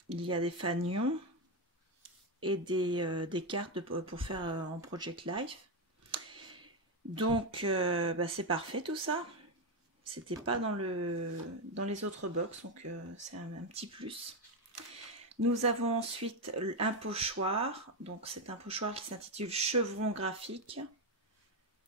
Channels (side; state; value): both; normal; correlation 0.08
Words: il y a des fanions et des cartes pour faire en Project Life. Donc, c'est parfait tout ça. C'était pas dans les autres box, donc c'est un petit plus. Nous avons ensuite un pochoir. Donc, c'est un pochoir qui s'intitule Chevron graphique.